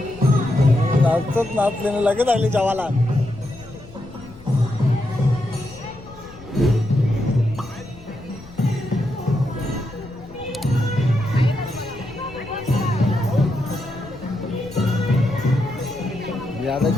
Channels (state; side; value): noise; left; rumble, 19 dB below the sound